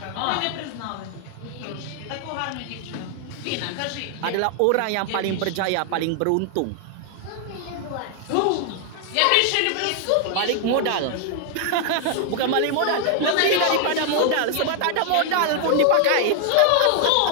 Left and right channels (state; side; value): different; both; correlation 0.00